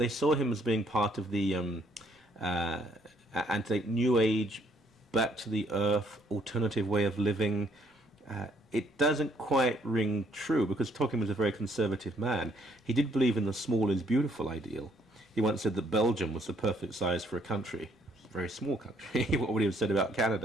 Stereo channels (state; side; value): normal; both; correlation 0.67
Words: saw him as being part of the New Age, back to the earth, alternative way of living. It doesn't quite ring true because Tolkien was a very conservative man. He did believe in the small is beautiful ideal. He once said that Belgium was the perfect size for a country. It's a very small country, what would he have said about